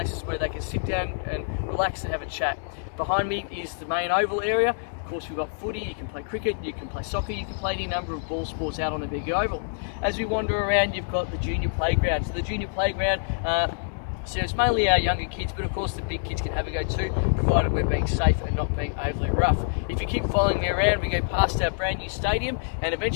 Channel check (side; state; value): right; silent; digital silence